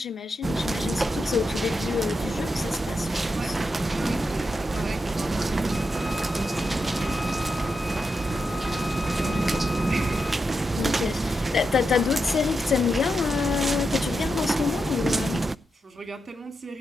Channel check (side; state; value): both; normal; correlation 0.86